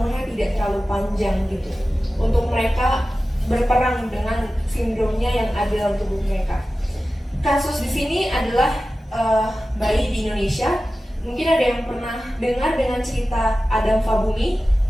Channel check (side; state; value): both; normal; correlation 0.95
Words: tidak terlalu panjang gitu. Untuk mereka berperang dengan sindromnya yang ada dalam tubuh mereka. Kasus di sini adalah bayi di Indonesia. Mungkin ada yang pernah dengar dengan cerita Adam Fabumi?